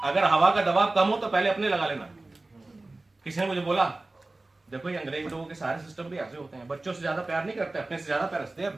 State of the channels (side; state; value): left; quieter; 3.0 dB